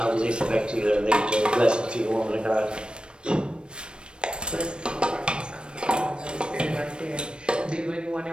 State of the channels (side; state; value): left; late; 0.054 ms